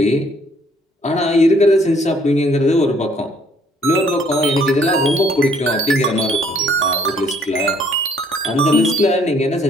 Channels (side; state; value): both; normal; correlation 0.63